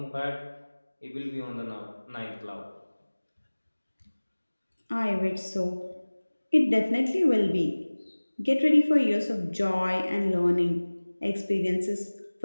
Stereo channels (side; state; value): both; inverted; correlation -1.00